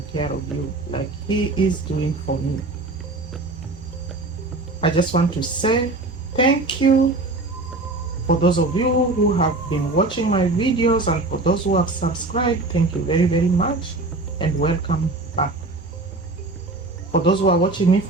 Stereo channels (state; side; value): quieter; left; 3.1 dB